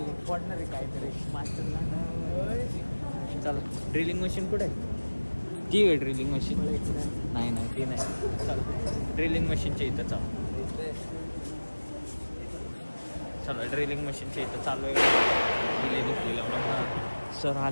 पडणार आहे काहीतरी मास्टर. चला, ड्रिलिंग मशीन कुठे आहे? ती आहे ड्रिलिंग मशीन. नाही ती नाही. चला ड्रिलिंग मशीनच्या इथं चला ड्रिलिंग मशीनच्या इथं चालू आहे. सर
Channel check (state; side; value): inverted; both; correlation -1.00